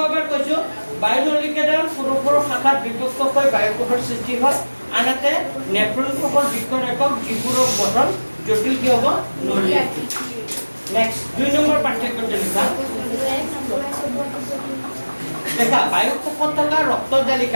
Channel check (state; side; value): inverted; both; correlation -1.00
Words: এবাৰ কৈছো বায়ুনলিকা ডাল সৰু সৰু শাখাত বিভক্ত হৈ বায়ুকোষৰ সৃষ্টি হয় আনহাতে নেফ্ৰন কোষৰ বৃক্কৰ একক যিবোৰৰ গঠন জটিল কি হ'ব নলী। নেক্সট 2 নম্বৰ পাঠ্যক্ৰমটো লিখা দেখা বায়ু কোষত থকা